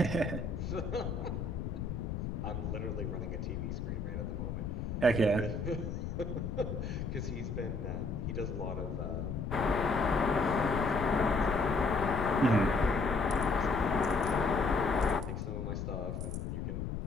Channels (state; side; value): noise; left; rumble, 3 dB below the sound